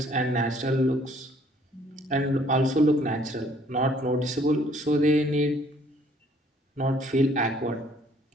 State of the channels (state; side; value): normal; both; correlation 0.61